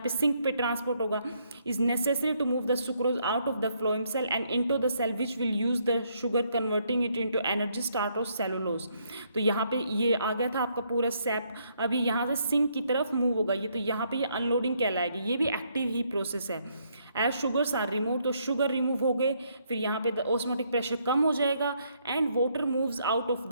सिंक पे ट्रांसपोर्ट होगा। Is necessary to move the sucrose out of the phloem cell and into the cell which will use the sugar converting it into energy start of cellulose. तो यहाँ पे ये आ गया था आपका पूरा सैप, अभी यहाँ से सिंक की तरफ मूव होगा ये, तो यहाँ पे ये अनलोडिंग कहलाएगी। ये भी एक्टिव ही प्रोसेस है। एज शुगर्स आर रिमूव, तो शुगर रिमूव हो गए, फिर यहाँ पे ऑस्मोटिक प्रेशर कम हो जाएगा and water moves out of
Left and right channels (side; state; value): both; inverted; correlation -0.72